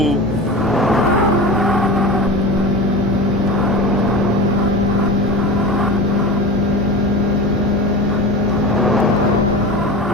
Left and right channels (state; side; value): normal; both; correlation 0.30